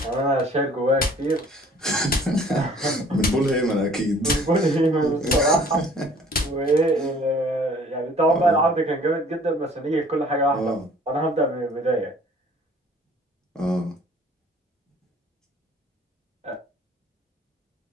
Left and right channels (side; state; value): both; normal; correlation 0.54